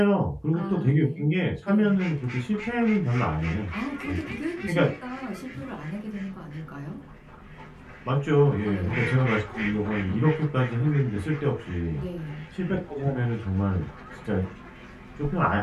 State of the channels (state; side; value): identical; both; correlation 1.00